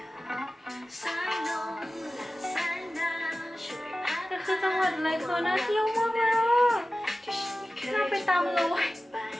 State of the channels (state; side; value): normal; both; correlation 0.95